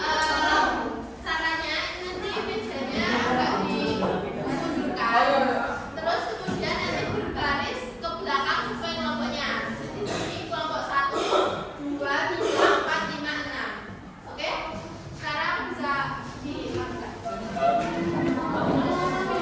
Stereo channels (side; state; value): both; identical; correlation 1.00